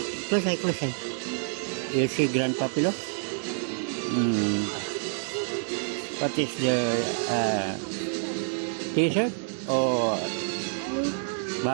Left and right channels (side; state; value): left; silent; digital silence